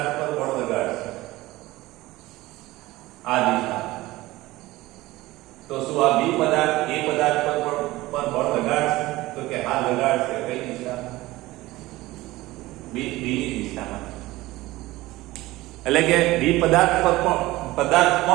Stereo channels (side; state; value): left; quieter; 18.6 dB